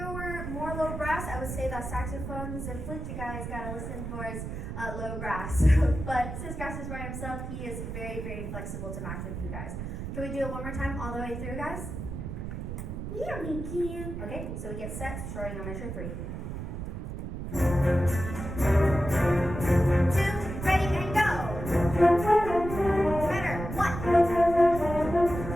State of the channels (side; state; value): right; noise; rumble, 6 dB below the sound